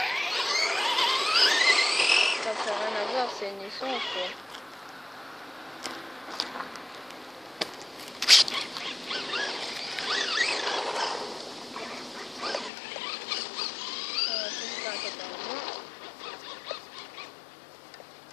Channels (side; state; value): right; drops out; at 12.7 s